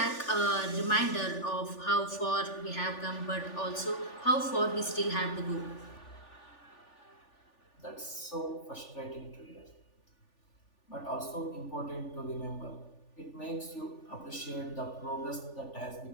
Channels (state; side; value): late; right; 3.4 ms